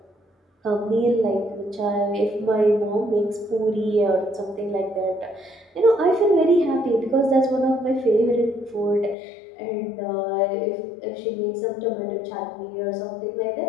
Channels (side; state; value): right; drops out; at 9.2 s